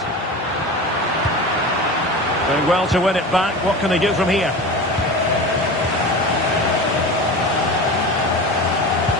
Doing well to win it back. What can they do from here?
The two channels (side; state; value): both; normal; correlation 0.30